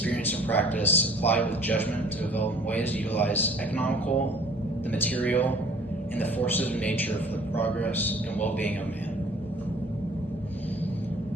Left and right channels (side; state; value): both; normal; correlation 0.52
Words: and practice applied with judgment to develop ways to utilize the material, and the forces of nature for the progress and well-being of man.